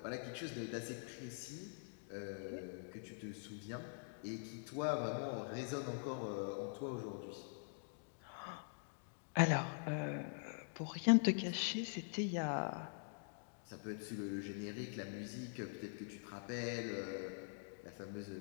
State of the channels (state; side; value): silent; right; digital silence